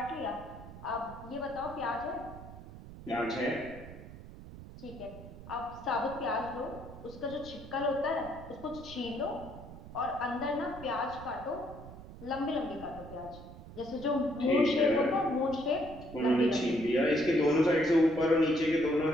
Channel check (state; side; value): noise; right; rumble, 15 dB below the sound